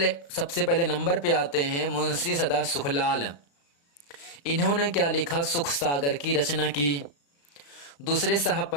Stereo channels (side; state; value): right; late; 35 ms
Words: पहले नंबर पे आते हैं मुंशी सदा सुखलाल। इन्होंने क्या लिखा? सुख सागर की रचना की। दूसरे साहब